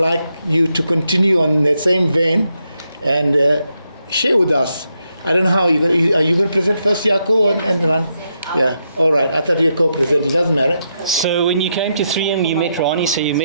you to continue on that same vein and share with us. I don't know how are you going to present first, Yako and Rani? Yeah, all right. I thought you were co-presenting. It doesn't matter. So when you came to 3M, you met Rani, so you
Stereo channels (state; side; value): inverted; both; correlation -0.82